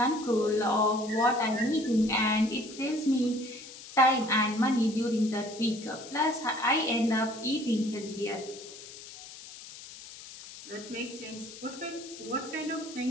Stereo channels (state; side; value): noise; left; hiss, 15 dB below the sound